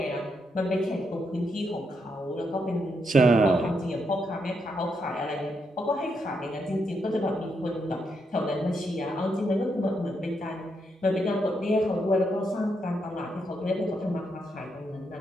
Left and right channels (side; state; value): both; normal; correlation 0.80